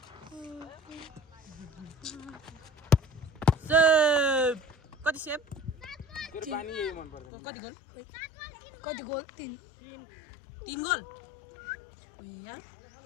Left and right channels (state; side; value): drops out; right; at 7.2 s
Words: कति सेप कति गोल 3 गोल यार